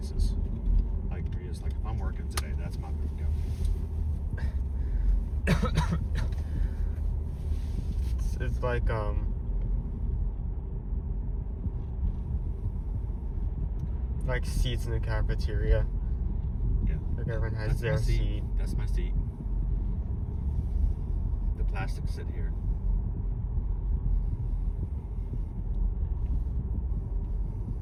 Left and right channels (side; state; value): both; identical; correlation 1.00